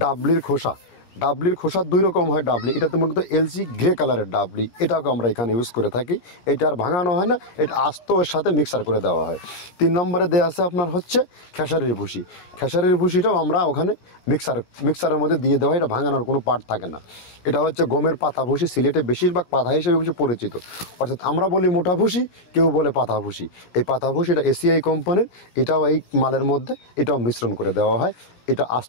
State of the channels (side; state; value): right; late; 17 ms